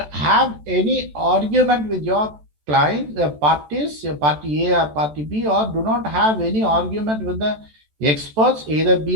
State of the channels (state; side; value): late; left; 14 ms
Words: have any argument with your client, parties, party A or party B, or do not have any argument with the experts, either